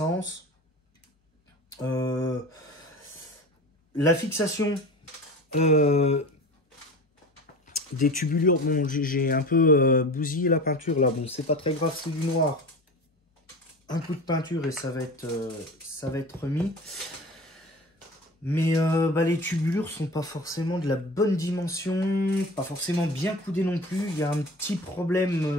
La fixation des tubulures, bon, j'ai un peu bousillé la peinture là. Bon, c'est pas très grave, c'est du noir. Un coup de peinture et ça va être remis. Mais les tubulures sont pas forcément de la bonne dimension, pas forcément bien coudées non plus. Il y a un petit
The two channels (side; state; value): both; normal; correlation 0.35